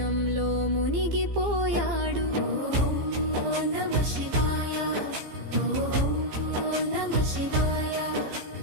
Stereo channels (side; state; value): left; late; 15 ms